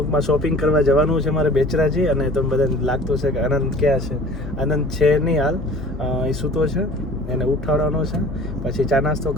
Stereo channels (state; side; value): normal; both; correlation 0.45